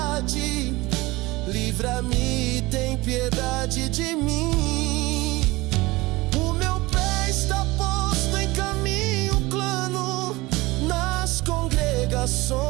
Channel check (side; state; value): left; quieter; 21.4 dB